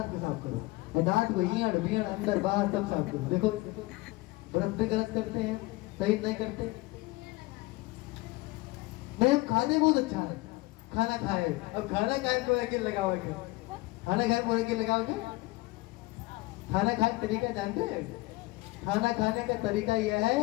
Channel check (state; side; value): quieter; right; 21.3 dB